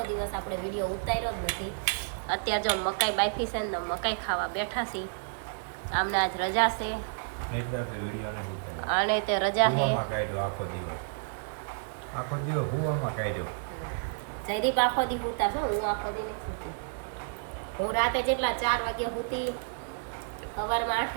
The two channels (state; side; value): silent; left; 58 dB below the other